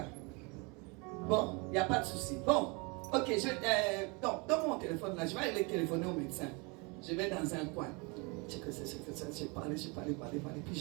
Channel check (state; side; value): quieter; left; 29.5 dB